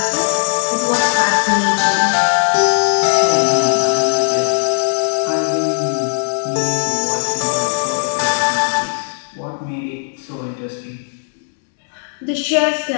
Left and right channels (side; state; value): right; silent; digital silence